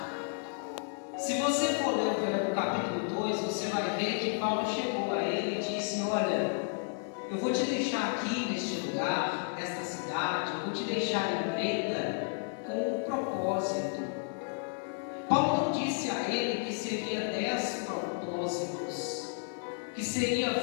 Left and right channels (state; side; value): silent; right; 56 dB below the other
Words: Se você for ler o capítulo 2, você vai ver que Paulo chegou a ele e disse: olha, eu vou te deixar aqui neste lugar, nesta cidade, eu vou te deixar em Creta com um propósito. Paulo não disse a ele que seria 10 propósitos, que seria